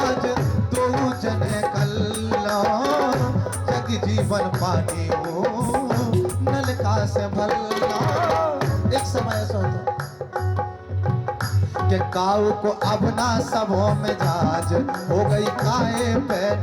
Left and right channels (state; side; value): identical; both; correlation 1.00